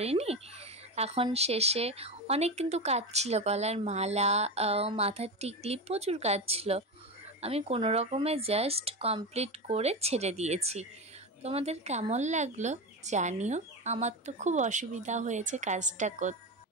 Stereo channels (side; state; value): both; normal; correlation 0.19